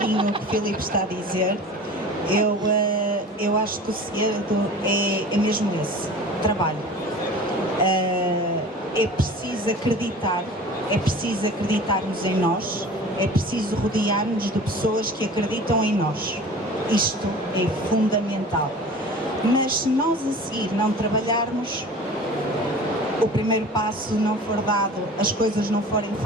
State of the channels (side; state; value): both; normal; correlation 0.40